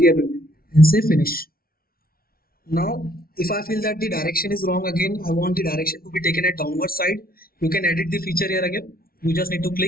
and say finish. Now if I feel that the direction is wrong, again I want the direction to be taken at downward side, you can edit the feature here again. You just need to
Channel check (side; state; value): right; late; 0.43 ms